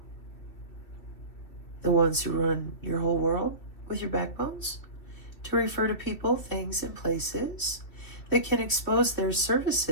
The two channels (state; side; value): late; right; 2.8 ms